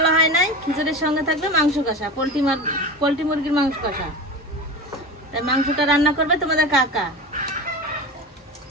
হয় নাই, খিচুড়ির সঙ্গে থাকবে মাংস কষা, পোলট্রি মুরগির মাংস কষা। তাই মাংসটা রান্না করবে তোমাদের কাকা।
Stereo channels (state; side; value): normal; both; correlation 0.29